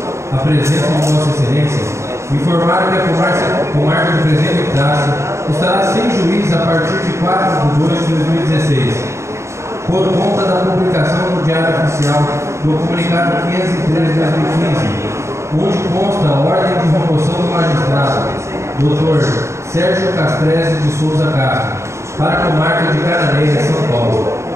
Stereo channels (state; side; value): late; left; 0.14 ms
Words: a presença de Vossa Excelência, informar que a comarca do Presidente do Estado estará sem juiz a partir de 4 de 2 de 2016, por conta da publicação no Diário Oficial do Comunicado 503 de 2015, onde consta a ordem de remoção do magistrado, Dr. Sérgio Castrese de Souza Castro, para a comarca de Cananéia, São Paulo.